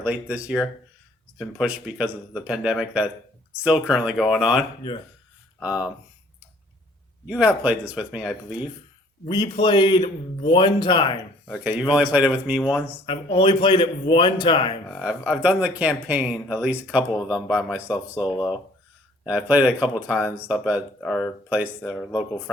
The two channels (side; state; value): both; normal; correlation 0.57